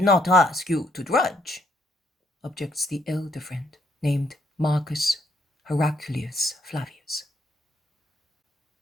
not ask you to drudge, objects the elder friend named Marcus Heraclius Flavius.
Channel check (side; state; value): both; normal; correlation 0.71